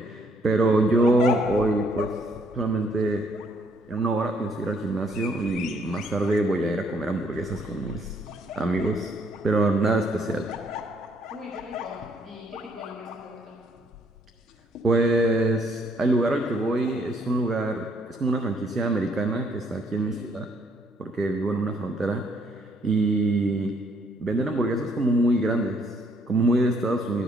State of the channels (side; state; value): both; normal; correlation 0.67